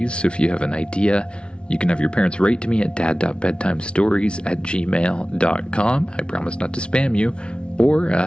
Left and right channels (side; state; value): right; late; 0.057 ms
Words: so if you have an idea, you can have your parents write to me at dad.bedtimestories@gmail.com. I promise not to spam you, or